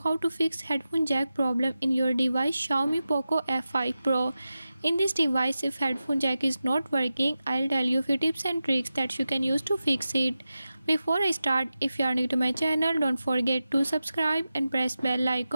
to fix headphone jack problem in your device Xiaomi POCO F5 Pro. In this device, if headphone jack is not working, I'll tell you a few tips and tricks that you can use to fix it. Before I start, if you are new to my channel, don't forget to subscribe and press bell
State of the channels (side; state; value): both; inverted; correlation -0.93